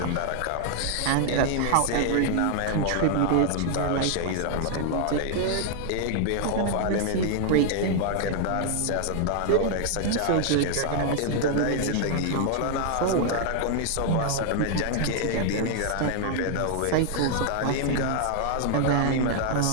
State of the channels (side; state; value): both; different; correlation -0.01